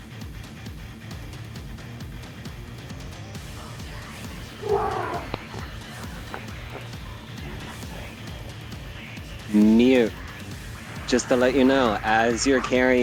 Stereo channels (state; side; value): identical; both; correlation 1.00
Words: Mute. Just to let you know, as you're